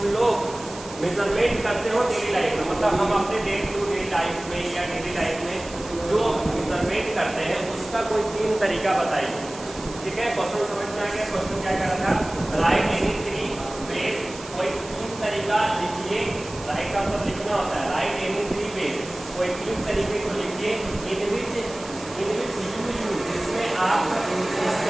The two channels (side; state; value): right; noise; hiss, 16 dB below the sound